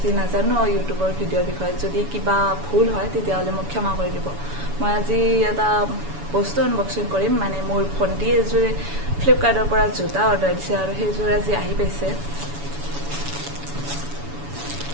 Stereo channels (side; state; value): left; late; 7.0 ms